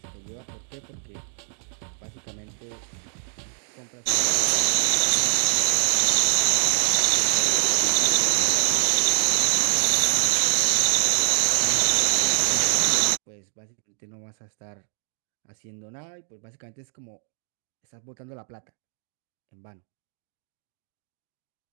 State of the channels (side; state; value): left; silent; digital silence